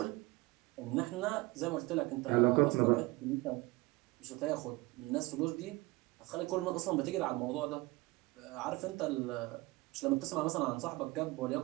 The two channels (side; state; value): left; quieter; 22.2 dB